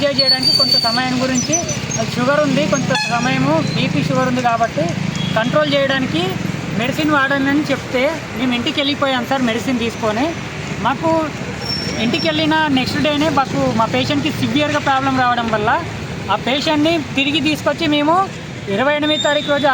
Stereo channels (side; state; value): both; identical; correlation 1.00